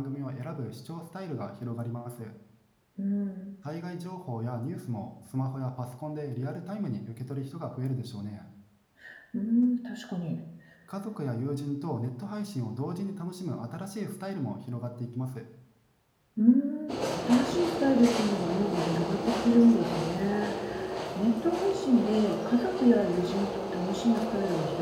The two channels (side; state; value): both; identical; correlation 1.00